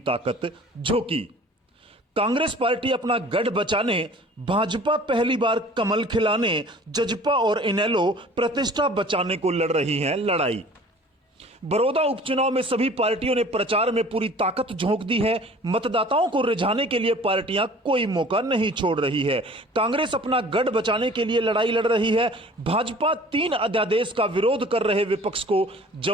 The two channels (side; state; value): both; normal; correlation 0.48